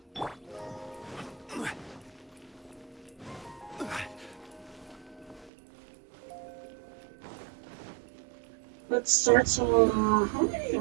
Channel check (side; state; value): left; drops out; at 5.5 s